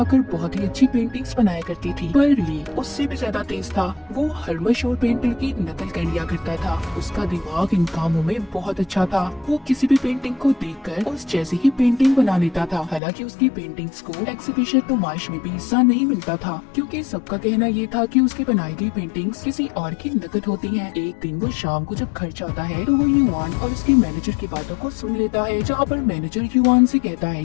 बहुत ही अच्छी पेंटिंग्स बनाया करती थी, पर ली उससे भी ज्यादा तेज था। वो हर मशहूर पेंटर की नकल कर लिया करता था। उसका दिमाग इन कामों में बहुत अच्छा था। वो किसी भी पेंटिंग को देखकर उस जैसी ही पेंटिंग बना लेता था। हालांकि उसकी पेंटिंग्स को एक्सिबिशन नुमाइश में भी हिस्सा नहीं मिलता था, क्योंकि सबका कहना ये था कि उसकी बनाई गई पेंटिंग्स किसी और की नकल होती हैं। एक दिन वो शाम को जब घर जाता है तो वो युआन और उसके मैनेजर की बातों को सुन लेता है, जहाँ पर मैनेजर युआन से कहता है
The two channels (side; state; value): right; drops out; at 13.0 s